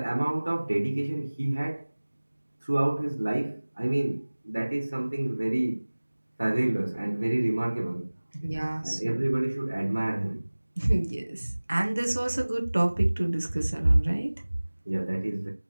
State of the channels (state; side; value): inverted; both; correlation -1.00